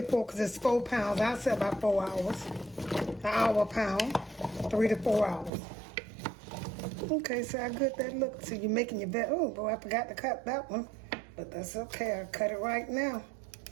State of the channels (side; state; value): left; drops out; at 5.5 s